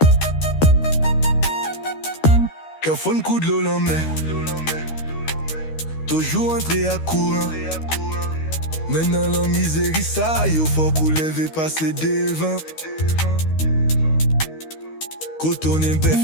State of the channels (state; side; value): late; right; 13 ms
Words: Qu'un fun coup de l'eau la main, toujours entré à courant. Maintenant la misérie ça, yo faut couler, passer devant. Quand on est bête,